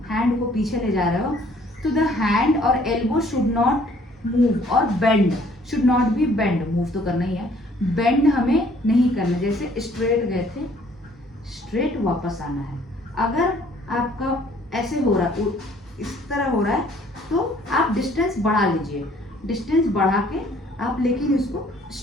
हैंड को पीछे ले जा रहे हो, तो द हैंड और एल्बो शुड नॉट मूव, और bend should not B bend. Move तो करना ही है, बेंड हमें नहीं करना। जैसे स्ट्रेट गए थे, स्ट्रेट वापस आना है। अगर आपका ऐसे हो रहा है, इस तरह हो रहा है, तो आप डिस्टेंस बढ़ा लीजिए, डिस्टेंस बढ़ा के आप लेकिन इसको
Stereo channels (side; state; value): both; normal; correlation 0.60